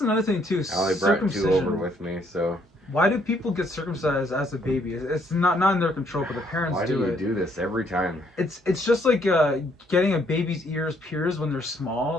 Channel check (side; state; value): both; normal; correlation 0.68